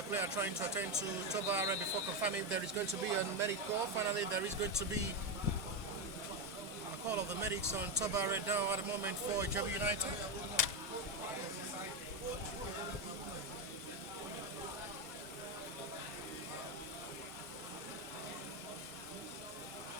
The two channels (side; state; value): both; normal; correlation 0.10